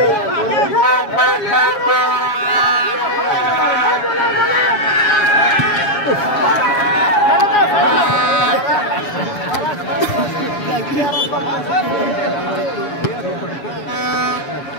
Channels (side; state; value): right; late; 7.2 ms